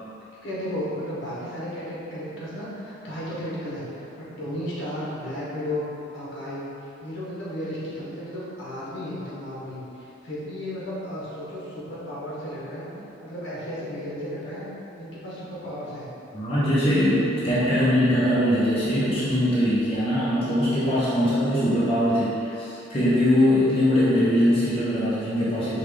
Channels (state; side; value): normal; both; correlation 0.70